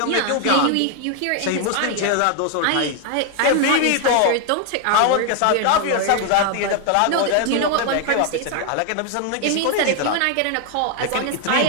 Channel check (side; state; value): both; different; correlation 0.01